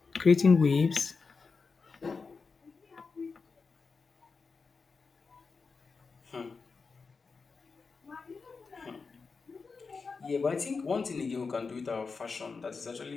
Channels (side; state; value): right; quieter; 4.7 dB